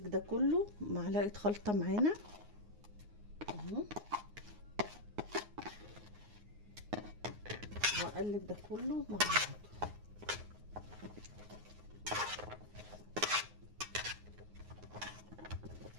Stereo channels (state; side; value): late; left; 9.6 ms